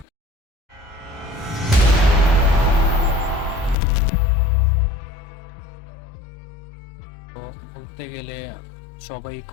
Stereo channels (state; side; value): drops out; right; at 3.8 s